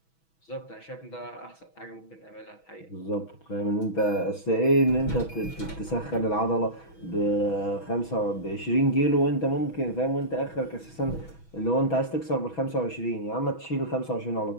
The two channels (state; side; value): late; right; 6.2 ms